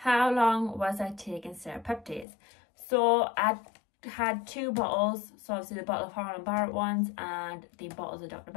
long was I taking serapeptase? So I had 2 bottles. So obviously the bottle of Holland Barrett ones and the bottles of Dr.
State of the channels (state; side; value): drops out; right; at 2.2 s